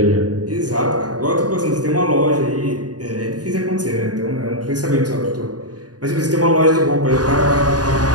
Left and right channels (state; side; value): late; left; 0.68 ms